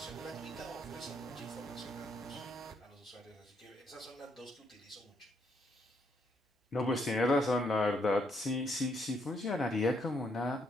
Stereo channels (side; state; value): both; normal; correlation 0.73